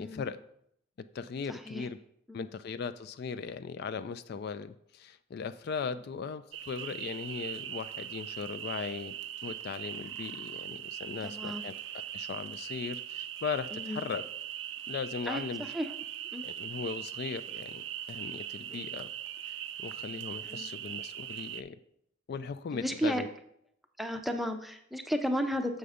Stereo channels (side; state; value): both; normal; correlation 0.33